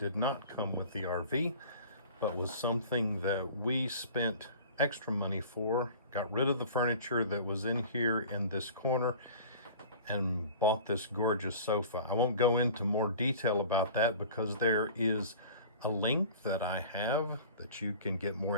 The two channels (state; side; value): inverted; both; correlation -0.41